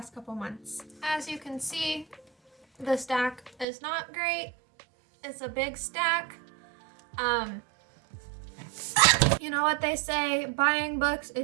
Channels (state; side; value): drops out; left; at 3.7 s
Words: couple months. As you can see, the stack is not great. It's a big stack. You know what they say, buying books